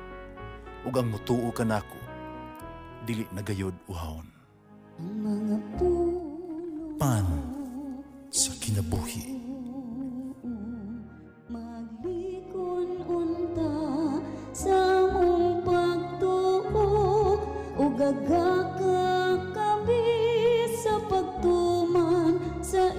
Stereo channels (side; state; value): both; identical; correlation 1.00